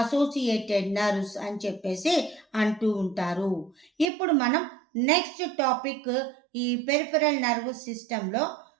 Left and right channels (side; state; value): left; drops out; at 4.0 s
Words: అసోసియేటెడ్ నర్వ్స్ అని చెప్పేసి అంటూ ఉంటారు. ఇప్పుడు మనం నెక్స్ట్ టాపిక్ ఈ పెరిఫెరల్ నర్వస్ సిస్టంలో